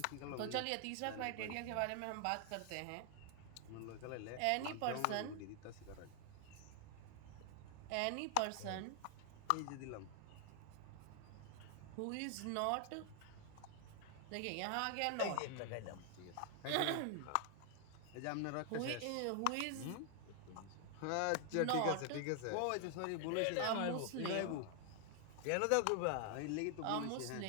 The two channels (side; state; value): both; different; correlation 0.00